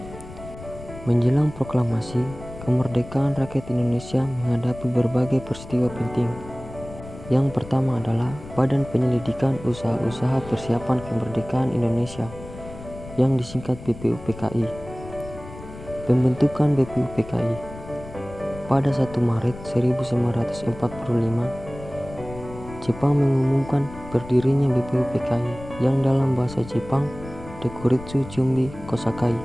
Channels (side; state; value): left; noise; rumble, 15 dB below the sound